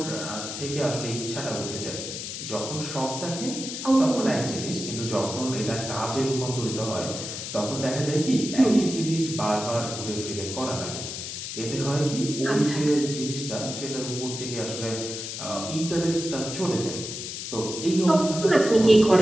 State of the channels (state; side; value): noise; left; hiss, 7 dB below the sound